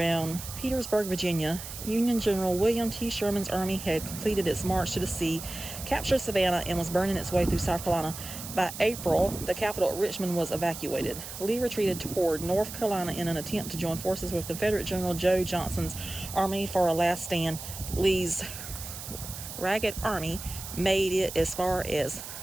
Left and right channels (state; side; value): noise; right; hiss, 10 dB below the sound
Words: Petersburg, Virginia. Union General William T. Sherman's army had completed its march to the sea, captured Savannah, and was burning its way through South Carolina. By April, the capital at Richmond was evacuated. Lee retreated toward North Carolina in an attempt to join forces with Confederate General Joe Johnston's army for a last stand. Lee's ragged army made it as far as